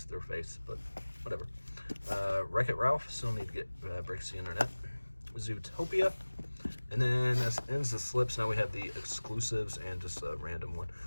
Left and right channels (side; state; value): both; inverted; correlation -1.00